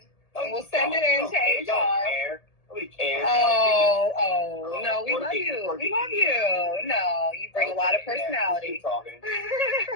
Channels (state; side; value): late; right; 1.7 ms